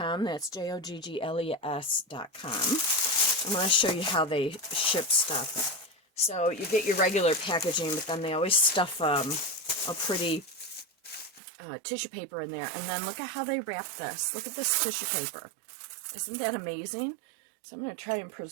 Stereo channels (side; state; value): left; drops out; at 11.4 s